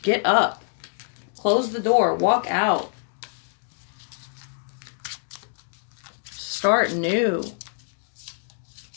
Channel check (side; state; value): right; silent; digital silence